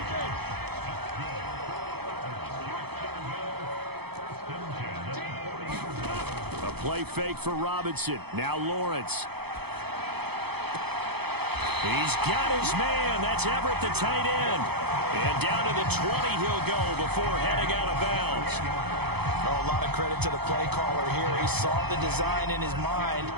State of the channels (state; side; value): late; left; 0.97 ms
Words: A play fake for Robinson. Now Lawrence. He's got his man. That's Everett, the tight end. And down to the 20 he'll go before heading out of bounds. Oh, a lot of credit to the play caller here. He saw the design in his mind